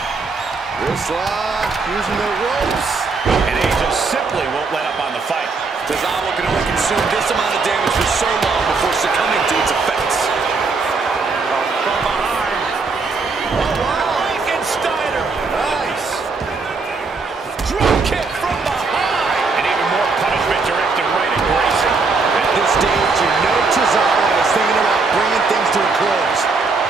Wrist lock, using the ropes. And Angel simply won't let up on the fight. Tozawa can only consume this amount of damage for so long before succumbing to its effects. From behind. Oh, wow. Frankensteiner. Nice. Drop kick from behind. And even more punishment directed right at Grayson. At this stage, you know Tozawa is thinking about bringing things to a close.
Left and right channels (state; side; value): quieter; left; 4.3 dB